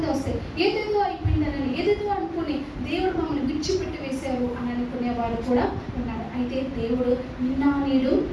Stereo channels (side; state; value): both; identical; correlation 1.00